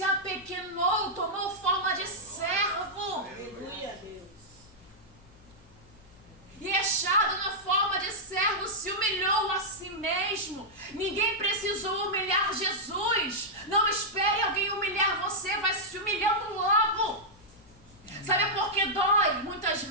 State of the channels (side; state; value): left; noise; hum, 27 dB below the sound